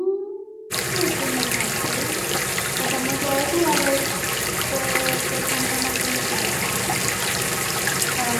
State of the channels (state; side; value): identical; both; correlation 1.00